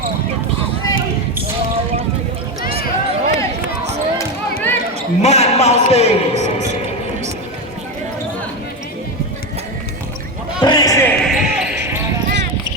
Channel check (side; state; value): both; normal; correlation 0.15